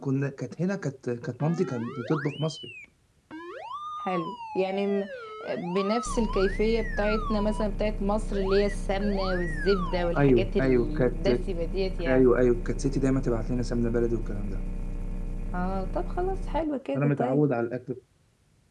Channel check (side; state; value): both; identical; correlation 1.00